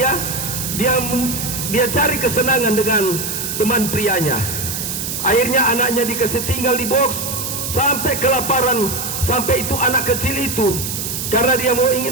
cari kesenangan dengan teman prianya. Akhirnya anaknya dikasih tinggal di box sampai kelaparan. Sampai itu anak kecil itu, karena dia mau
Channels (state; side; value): noise; right; hiss, 4 dB below the sound